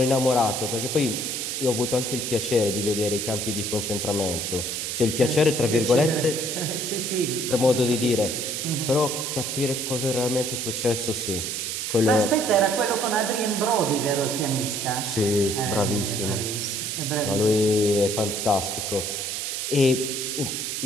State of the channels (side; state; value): right; noise; hiss, 3 dB below the sound